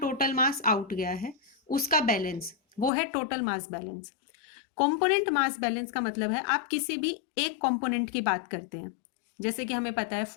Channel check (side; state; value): right; drops out; at 2.9 s